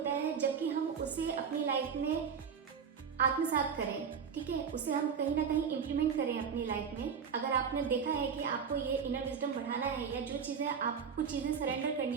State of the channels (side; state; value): left; quieter; 6.7 dB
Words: है जबकि हम उसे अपनी लाइफ में आत्मसात करें, ठीक है, उसे हम कहीं ना कहीं इम्प्लीमेंट करें अपनी लाइफ में। अगर आपने देखा है कि आपको ये इनर विजडम बढ़ाना है या जो चीज़ें आपको कुछ चीज़ें सरेंडर करनी